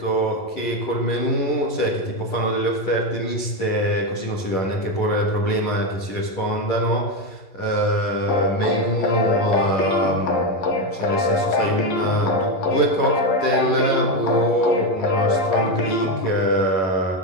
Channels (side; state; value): right; late; 11 ms